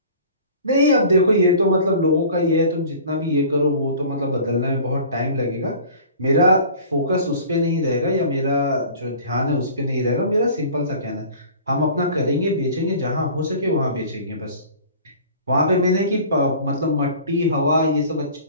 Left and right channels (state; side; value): inverted; both; correlation -0.44